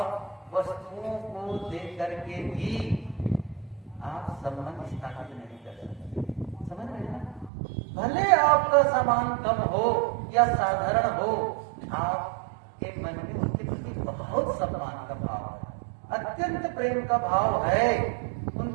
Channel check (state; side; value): drops out; left; at 7.5 s